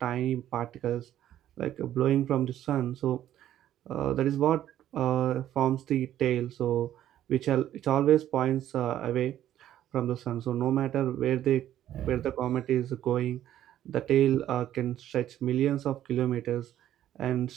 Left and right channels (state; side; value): quieter; left; 11.9 dB